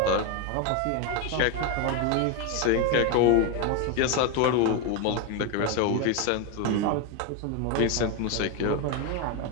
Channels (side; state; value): both; different; correlation 0.02